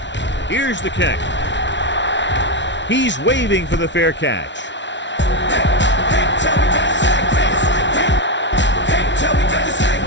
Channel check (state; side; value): late; right; 0.52 ms